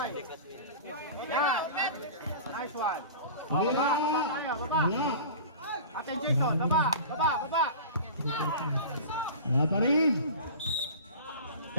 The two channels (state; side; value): inverted; both; correlation -0.36